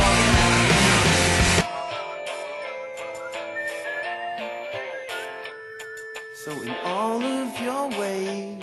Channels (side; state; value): both; identical; correlation 1.00